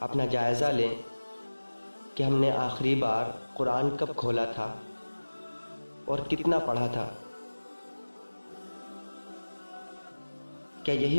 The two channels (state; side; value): inverted; both; correlation -1.00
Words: جائزہ لیں کہ ہم نے آخری بار قرآن کب کھولا تھا اور کتنا پڑھا تھا۔ کیا